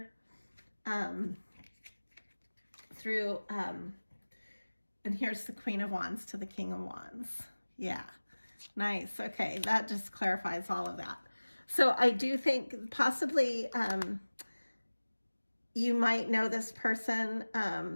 through, and here's the Queen of Wands to the King of Wands. Yeah, nice. Okay, that just clarifies all of that. So I do think possibly you might know this person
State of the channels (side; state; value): both; inverted; correlation -1.00